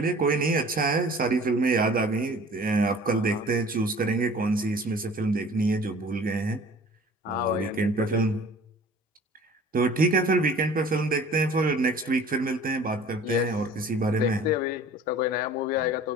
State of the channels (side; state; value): both; normal; correlation 0.46